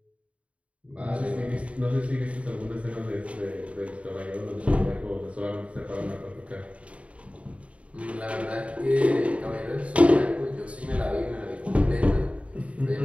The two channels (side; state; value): left; late; 0.064 ms